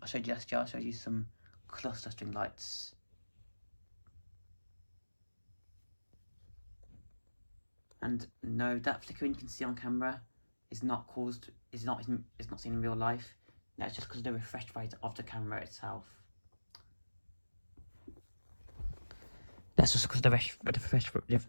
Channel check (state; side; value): inverted; both; correlation -1.00